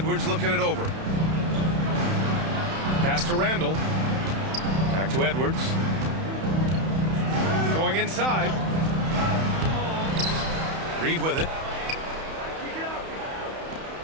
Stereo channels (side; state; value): left; late; 31 ms